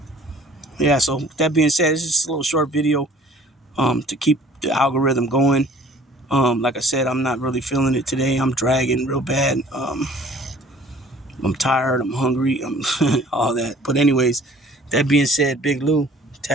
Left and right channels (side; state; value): both; normal; correlation 0.52